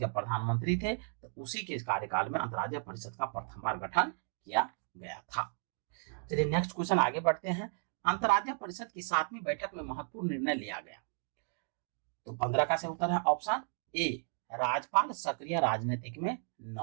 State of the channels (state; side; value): silent; left; 55 dB below the other